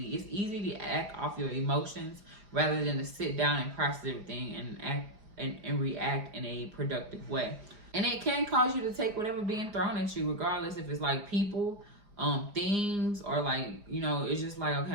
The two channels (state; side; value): late; left; 4.9 ms